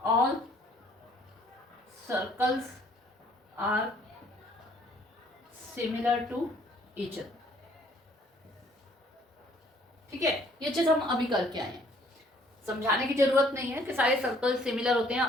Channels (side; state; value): both; normal; correlation 0.61